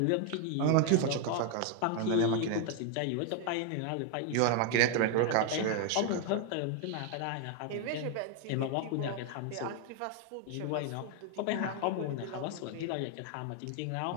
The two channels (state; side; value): different; both; correlation 0.01